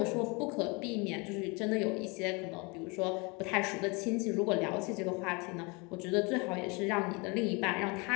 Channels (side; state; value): right; quieter; 28.8 dB